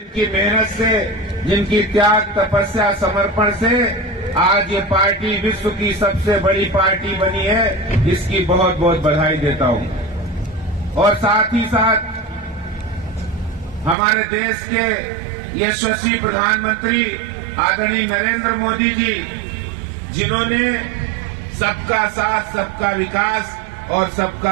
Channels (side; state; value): left; drops out; at 14.0 s